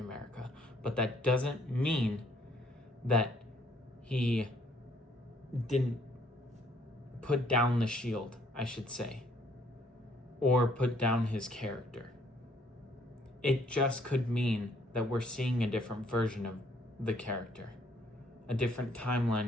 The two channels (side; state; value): both; normal; correlation 0.65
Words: But that doesn't mean that he didn't put down the shield, I should say, or put down his character. It just could mean that we're seeing a different version of the character, a different